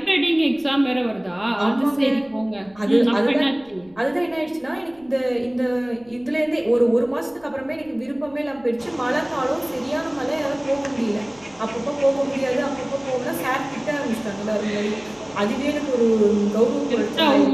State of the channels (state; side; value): noise; left; rumble, 28 dB below the sound